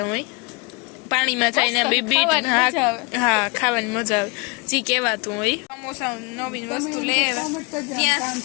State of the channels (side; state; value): right; quieter; 28.9 dB